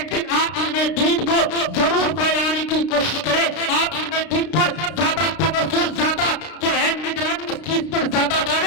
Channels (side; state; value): right; late; 33 ms